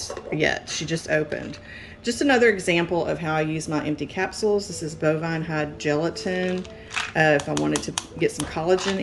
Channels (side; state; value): both; identical; correlation 1.00